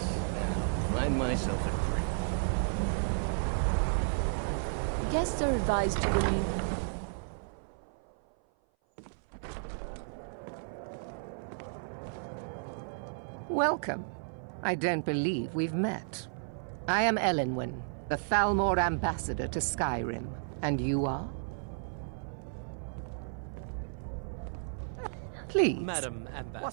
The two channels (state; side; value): silent; left; 56 dB below the other